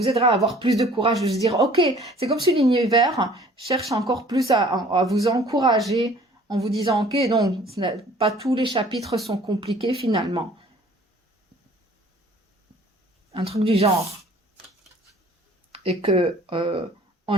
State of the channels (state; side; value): normal; both; correlation 0.53